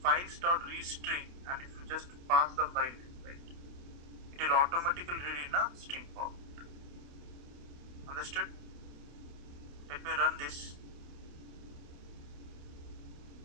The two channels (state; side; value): late; left; 28 ms